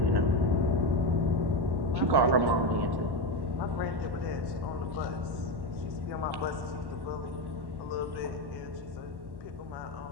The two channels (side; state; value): left; late; 1.1 ms